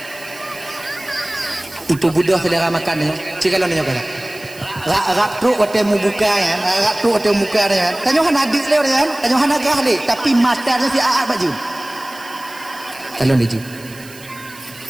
Itu budak selera makan dia. Cikalau dia kata. Rak truk waktu mu buka kan, rak truk waktu muka dia kan. Tanya han adik leo dia kan, tanya han agah le, tapi matanya si aat baju. Kalau dia ju.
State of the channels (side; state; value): right; noise; hiss, 20 dB below the sound